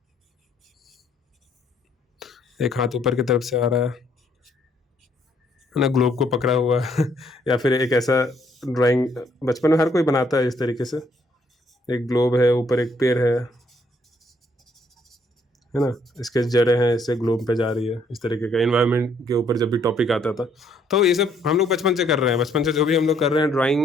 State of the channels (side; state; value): both; normal; correlation 0.68